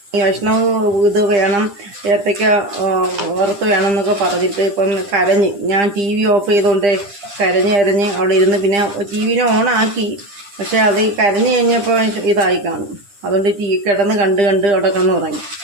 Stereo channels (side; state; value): left; late; 10 ms